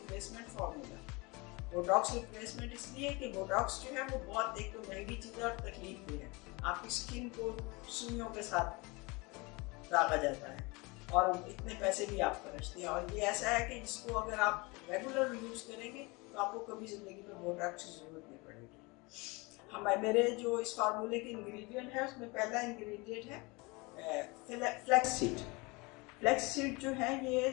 formula. Botox replacement इसलिए कि बोटॉक्स जो है वो बहुत एक तो महंगी चीज़ है और तकलीफ भी है। आपकी स्किन को सुइयों के साथ दागा जाता है और इतने पैसे भी आप खर्चते हैं। और ये ऐसा है कि जिसको अगर आप रेगुलर यूज़ करेंगे तो आपको कभी ज़िंदगी में बोटॉक्स की ज़रूरत नहीं पड़ेगी। मेरे जो इस फार्मूले के इंग्रेडिएंट है उसमें पहला इंग्रेडिएंट है फ्लैक्स सीड। फ्लैक्स सीड जो है ये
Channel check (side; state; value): right; quieter; 26.1 dB